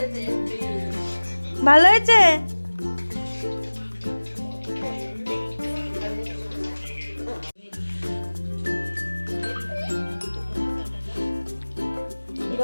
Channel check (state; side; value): inverted; both; correlation -1.00